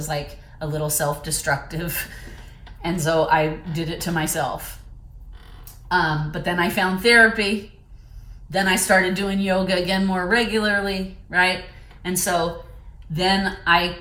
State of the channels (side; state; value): both; identical; correlation 1.00